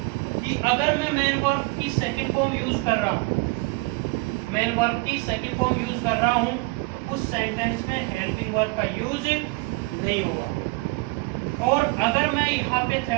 कि अगर मैं मेन वर्ब की सेकंड फॉर्म यूज कर रहा हूँ, मेन वर्ब की सेकंड फॉर्म यूज कर रहा हूँ, तो उस सेंटेंस में हेल्पिंग वर्ब का यूज नहीं होगा। और अगर मैं यहाँ पे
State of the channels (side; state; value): left; quieter; 25.6 dB